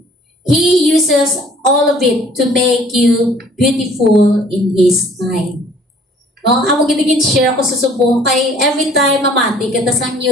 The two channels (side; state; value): both; normal; correlation 0.55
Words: He uses all of it to make you beautiful in His time. No, amo gid share ko sa subong kay every time mamati kita sa